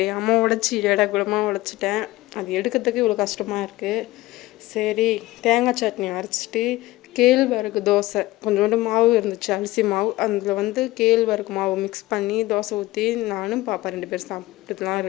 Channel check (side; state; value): right; quieter; 18.4 dB